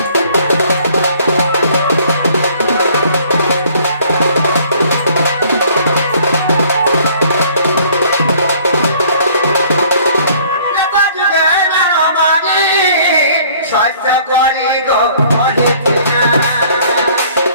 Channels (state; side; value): inverted; both; correlation -0.57